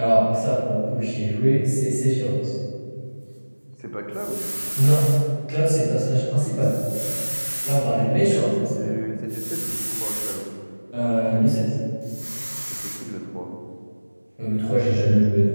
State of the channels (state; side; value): inverted; both; correlation -1.00